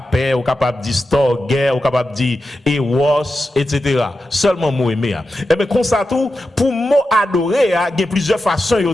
ou capable de dire storge, ou capable de dire eros, etc. Seulement mot aimer. Et bien comme ça tout, pour mot adorer, il y a plusieurs façons de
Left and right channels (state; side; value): normal; both; correlation 0.90